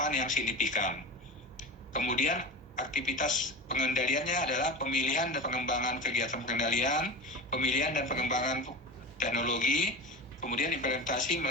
yang signifikan. Kemudian aktivitas pengendaliannya adalah pemilihan dan pengembangan kegiatan pengendalian, pemilihan dan pengembangan teknologi, kemudian implementasi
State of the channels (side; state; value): both; normal; correlation 0.28